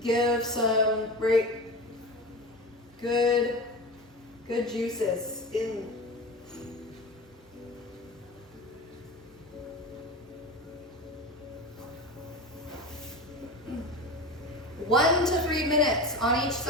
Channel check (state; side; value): normal; both; correlation 0.28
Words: Give some great, good juices in. One to 3 minutes on each